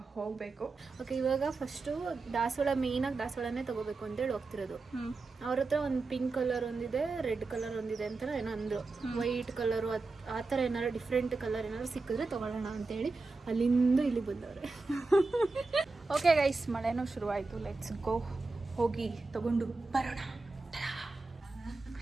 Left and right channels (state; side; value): quieter; left; 3.7 dB